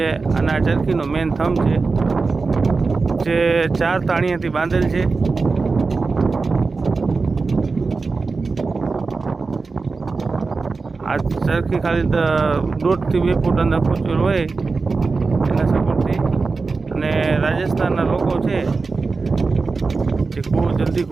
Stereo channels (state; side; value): quieter; left; 4.2 dB